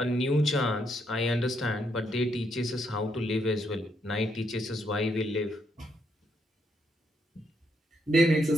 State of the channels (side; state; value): both; normal; correlation 0.76